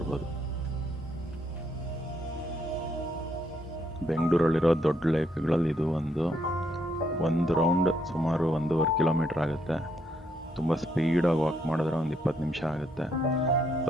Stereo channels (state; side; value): normal; both; correlation 0.74